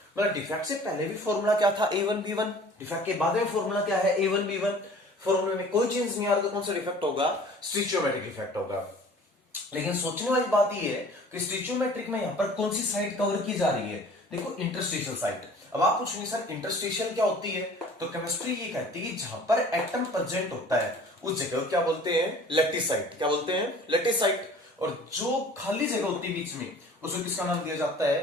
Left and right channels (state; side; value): normal; both; correlation 0.48